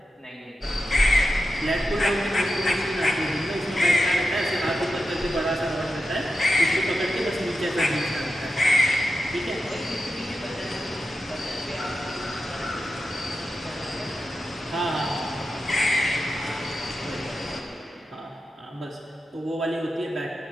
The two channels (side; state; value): both; normal; correlation 0.90